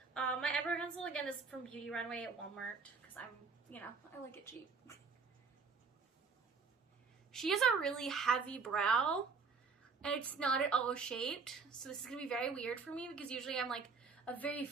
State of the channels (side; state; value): left; quieter; 4.9 dB